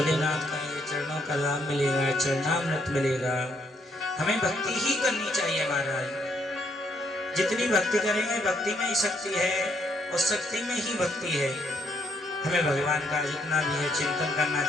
का ये चरणों का लाभ मिलेगा, चरणामृत मिलेगा। हमें भक्ति ही करनी चाहिए महाराज। जितनी भक्ति करेंगे भक्ति में ही शक्ति है, और शक्ति में ही भक्ति है। हमें भगवान का जितना भी है चिंतन करना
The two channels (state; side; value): normal; both; correlation 0.71